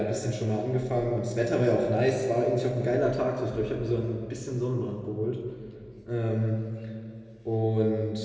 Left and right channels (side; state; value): both; identical; correlation 1.00